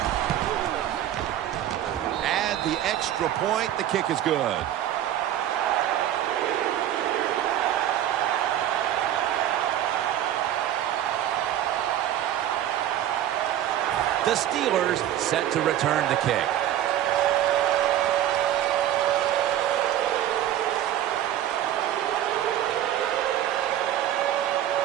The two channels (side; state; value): left; quieter; 11.8 dB